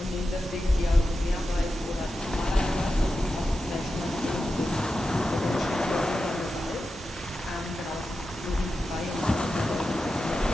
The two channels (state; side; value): normal; both; correlation 0.90